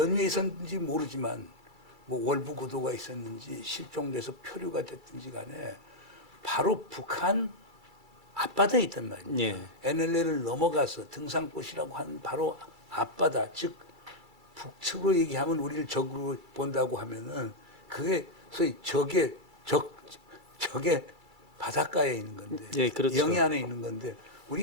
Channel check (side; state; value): left; late; 2.3 ms